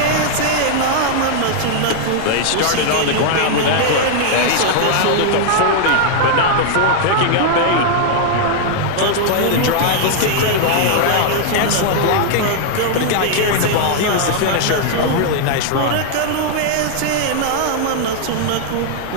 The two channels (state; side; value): different; both; correlation -0.01